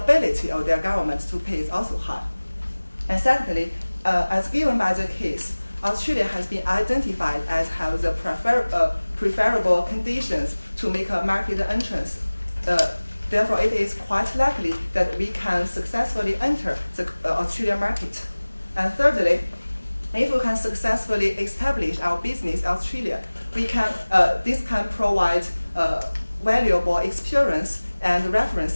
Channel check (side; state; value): both; inverted; correlation -1.00